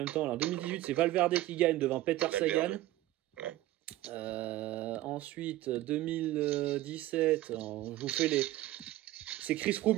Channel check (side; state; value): left; quieter; 15.8 dB